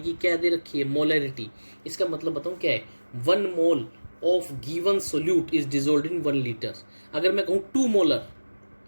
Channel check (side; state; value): both; inverted; correlation -1.00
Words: कि क्या दे रखी है मोलरिटी, इसका मतलब बताऊँ क्या है, 1 mole of given solute is dissolved in 1 litre. अगर मैं कहूँ 2 मोलर